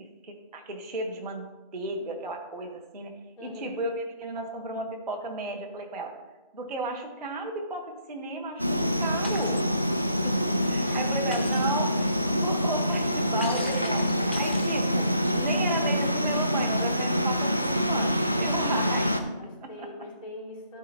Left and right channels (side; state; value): both; inverted; correlation -0.68